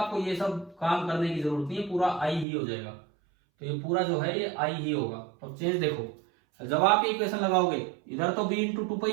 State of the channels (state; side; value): drops out; left; at 2.5 s